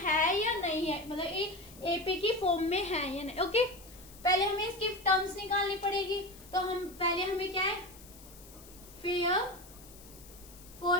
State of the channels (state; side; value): noise; left; hiss, 20 dB below the sound